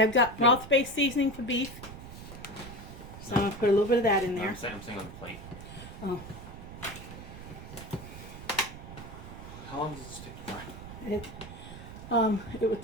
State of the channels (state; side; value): noise; right; rumble, 13 dB below the sound